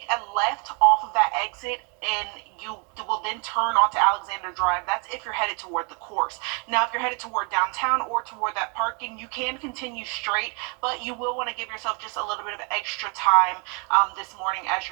a left off of that exit, and you will then turn onto Alexander Drive. That's if you're headed toward the course. Now, if you're headed toward downtown or toward that parking, you can continue straight, but you will want to give yourself just a little bit of extra time this morning as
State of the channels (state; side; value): quieter; left; 34.9 dB